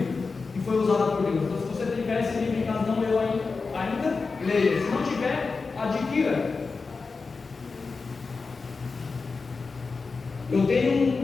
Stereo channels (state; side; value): quieter; right; 4.4 dB